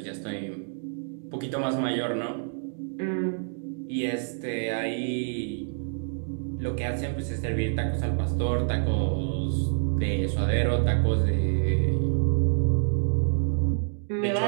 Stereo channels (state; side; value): silent; left; digital silence